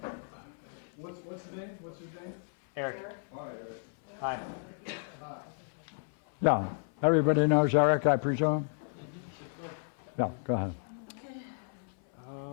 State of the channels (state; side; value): silent; right; 56 dB below the other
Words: What's the name? What's his name? Eric. Hi, Eric. Hi. Yeah, everybody knows Eric, I presume? Yeah, go ahead.